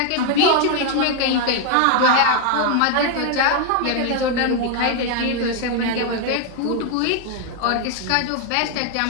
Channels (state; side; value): different; both; correlation 0.01